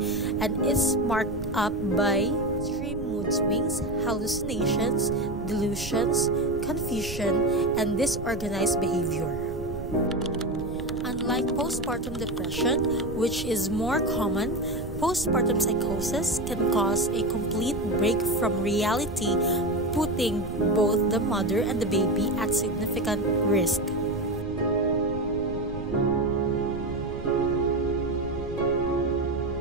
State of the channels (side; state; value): right; noise; rumble, 10 dB below the sound